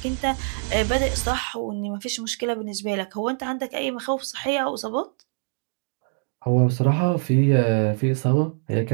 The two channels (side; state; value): left; silent; digital silence